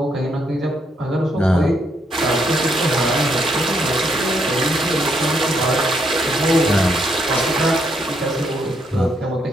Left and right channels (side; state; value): both; normal; correlation 0.75